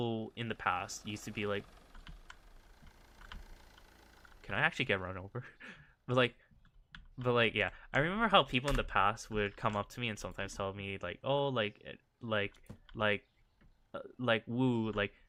in the past used to be like. Can I actually get run over? but like, yeah. I remember how people in the past would come up to me and sometimes tell me like, oh, like, woo, like,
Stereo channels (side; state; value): both; identical; correlation 1.00